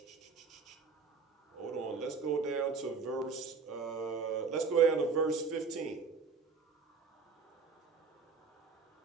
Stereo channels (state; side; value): quieter; left; 5.0 dB